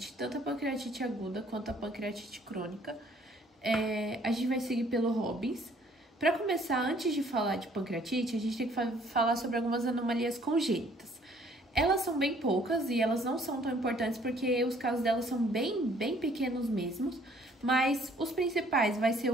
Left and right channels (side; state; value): both; normal; correlation 0.60